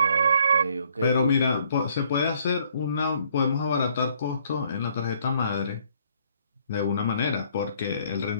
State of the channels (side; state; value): both; inverted; correlation -0.65